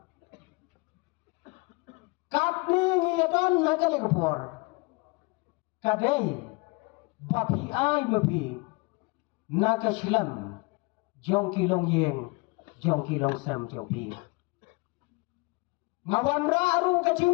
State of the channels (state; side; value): quieter; right; 27.5 dB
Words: katni ngiyadon na kali kapor kadey bapi ay mapi na kasilam jong kilong yeng jong kilong sam jong pi ngawan aru ka